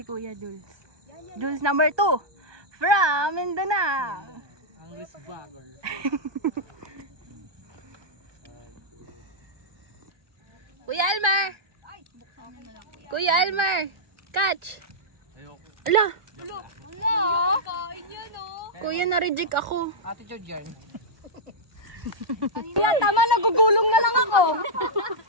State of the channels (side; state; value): left; late; 1.4 ms